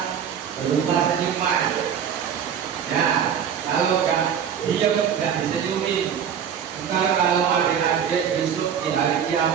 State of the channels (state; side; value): quieter; left; 8.2 dB